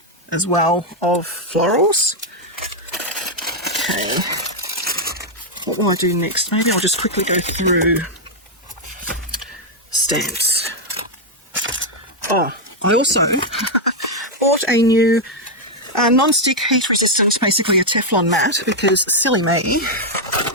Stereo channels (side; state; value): both; normal; correlation -0.01